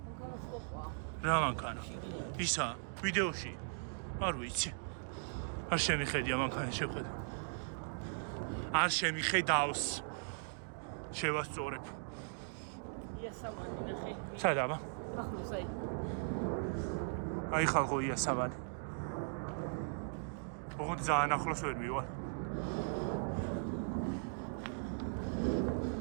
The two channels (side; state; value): left; silent; digital silence